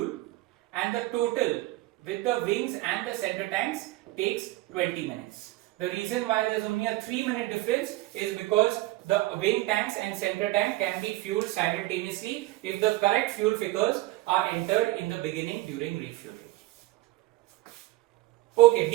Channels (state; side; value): quieter; left; 18.2 dB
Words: and the total with the wings and the center tanks takes 20 minutes. The reason why there is only a 3-minute difference is because the wing tanks and center tank can be fueled simultaneously if the correct fuel figures are entered in the beginning during refueling. Okay,